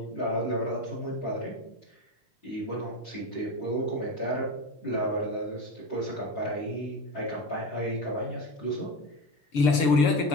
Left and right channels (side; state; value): right; late; 6.8 ms